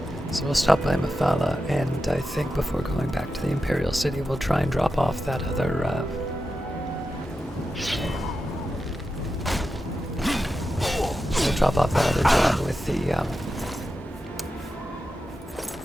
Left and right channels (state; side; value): normal; both; correlation 0.90